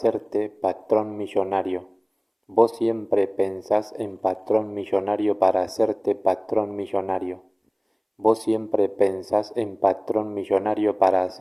patrón millonario. Vos siempre pensás en patrón millonario para hacerte patrón millonario. Vos siempre pensás en patrón millonario para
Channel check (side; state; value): both; identical; correlation 1.00